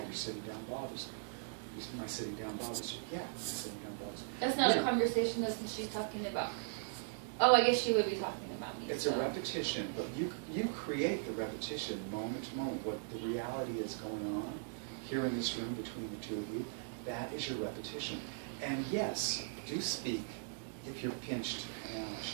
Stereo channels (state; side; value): silent; left; digital silence